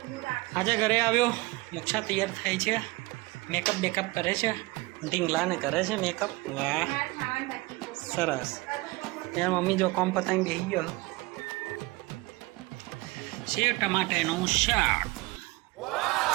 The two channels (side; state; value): left; quieter; 22.4 dB